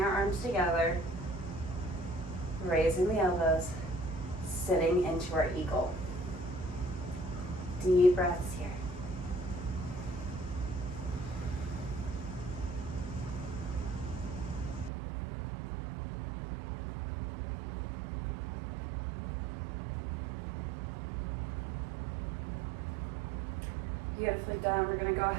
our arms together, raising the elbows, sitting into our eagle. Deep breaths here. Beautifully done. We're gonna go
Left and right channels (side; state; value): left; drops out; at 14.9 s